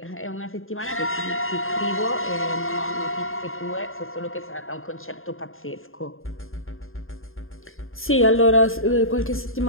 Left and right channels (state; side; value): late; right; 0.60 ms